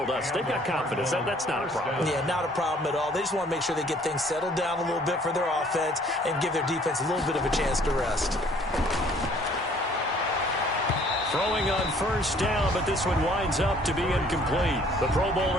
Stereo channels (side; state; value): both; normal; correlation 0.58